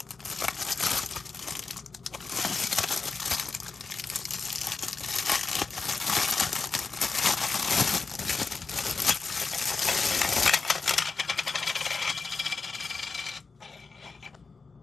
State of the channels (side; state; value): right; quieter; 4.4 dB